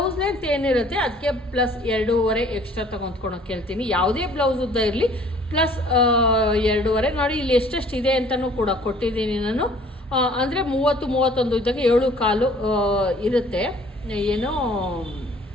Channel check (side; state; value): both; normal; correlation 0.54